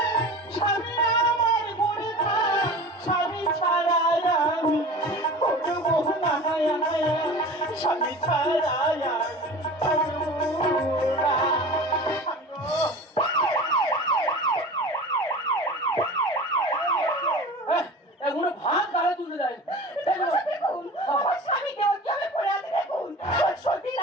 স্বামী আমার গুণে স্বামী ছাড়া আমি করবো না স্বামী ছাড়া এগুলো ভাত গালে তুলে দেয়। দেখুন আমার স্বামীকে কি আমি পড়ে আছে দেখুন সতীন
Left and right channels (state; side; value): normal; both; correlation 0.37